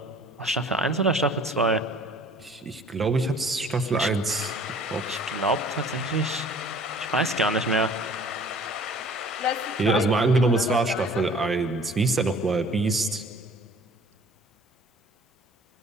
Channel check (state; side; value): normal; both; correlation 0.51